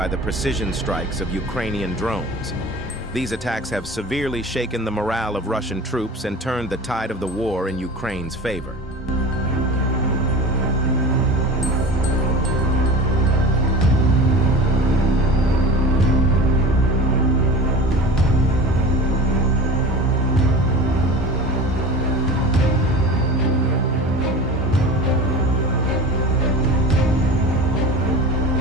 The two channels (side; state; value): both; normal; correlation 0.34